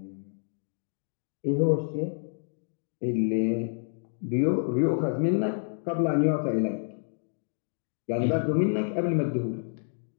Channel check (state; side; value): silent; right; digital silence